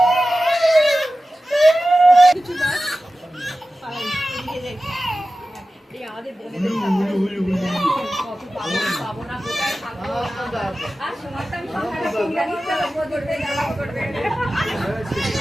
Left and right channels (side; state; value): both; normal; correlation 0.95